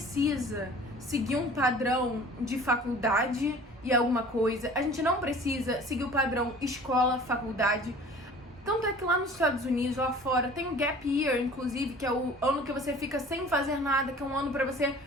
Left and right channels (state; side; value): normal; both; correlation 0.46